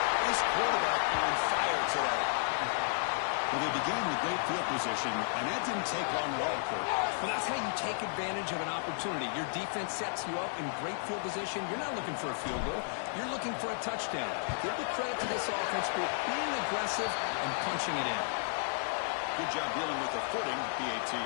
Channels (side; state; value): right; silent; digital silence